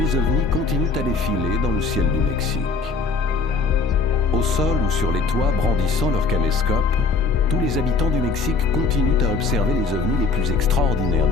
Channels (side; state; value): right; quieter; 4.2 dB